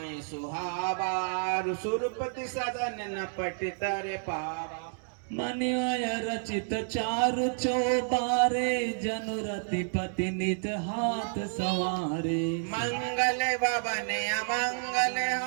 सुहावा सुरपति सदन न पट तर पावा मन्यय रचित चारु चौबारे जनु रतिपति निज हाथ सवारे मंगल भवन अमंगल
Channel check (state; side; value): silent; left; digital silence